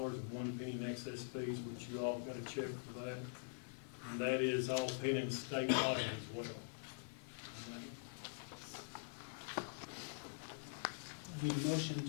in excess fees, which you all got a check for that. And that is all pending state audit as well. Need a motion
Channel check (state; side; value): silent; right; digital silence